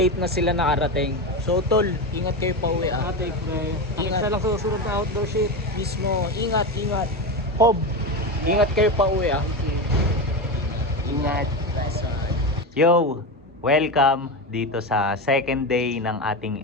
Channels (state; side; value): normal; both; correlation 0.18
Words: na sila nakarating. So tol, ingat kayo pa uwi ah. Ate, Ingat. isa lang susunod na outdoor shit. Mismo, ingat. Hob, ingat kayo pa uwi ah. Ingat. Yo, welcome dito sa second day ng ating